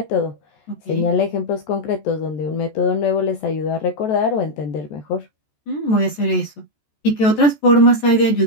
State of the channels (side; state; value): right; late; 14 ms